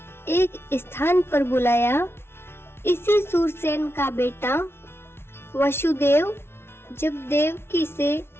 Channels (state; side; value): late; right; 0.12 ms